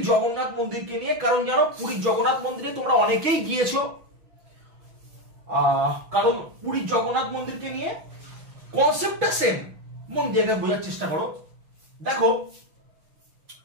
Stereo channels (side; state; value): left; late; 6.1 ms